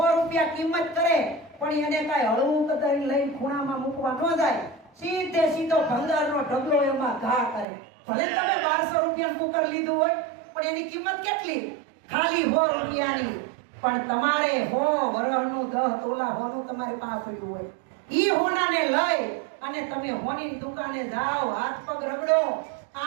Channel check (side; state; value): left; drops out; at 7.7 s